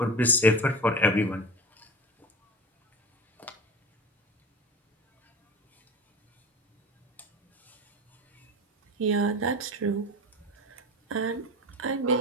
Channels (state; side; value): normal; both; correlation 0.30